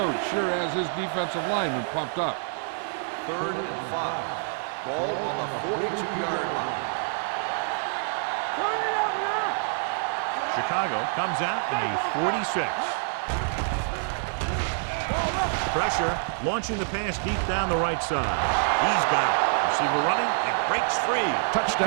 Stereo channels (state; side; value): silent; left; digital silence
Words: sure has his defensive lineman pumped up. Third and 5. Ball on the 42-yard line. Hey, watch the screen. Turn it out now. Chicago comes out in a 46. Pressure, launching the pass deep down the right side. He's got it. Receiver running and breaks free.